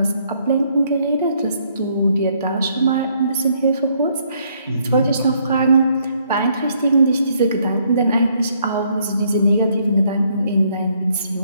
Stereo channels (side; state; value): both; inverted; correlation -0.69